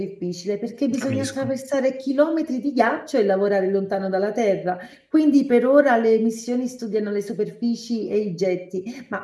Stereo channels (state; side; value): identical; both; correlation 1.00